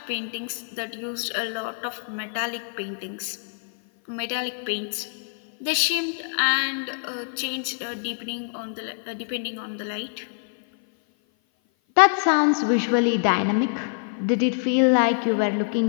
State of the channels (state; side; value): silent; right; 56 dB below the other